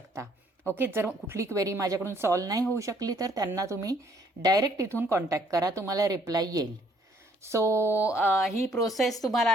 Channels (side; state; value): both; normal; correlation 0.64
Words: ओके, जर कुठली क्वेरी माझ्याकडून सॉल्व्ह नाही होऊ शकली तर त्यांना तुम्ही डायरेक्ट इथून कॉन्टॅक्ट करा, तुम्हाला रिप्लाय येईल. सो ही प्रोसेस तुम्हाला